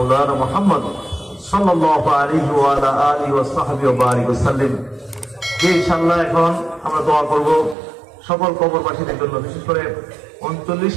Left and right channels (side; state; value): left; drops out; at 7.8 s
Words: محمد صلى الله عليه وعلى آله وصحبه وبارك وسلم। ইনশাআল্লাহ এখন আমরা দোয়া করব সকল কবরবাসীদের জন্য, বিশেষ করে